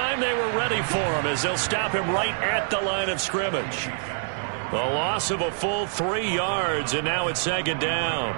they were ready for him as they'll stop him right at the line of scrimmage. The loss of a full 3 yards, and now it's 2nd down.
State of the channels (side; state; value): left; silent; digital silence